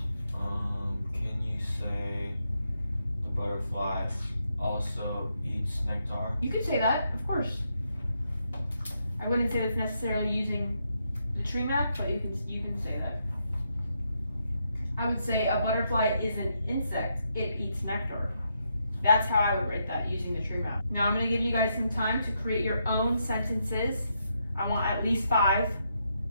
Can you say the butterfly also eats nectar? You could say that, of course. I wouldn't say that's necessarily using the tree map, but you can say that. I would say a butterfly is an insect. It eats nectar. That's how I would write that using the tree map. Now I'm going to give you guys some time to create your own sentences. I want at least 5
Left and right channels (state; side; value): inverted; both; correlation -0.79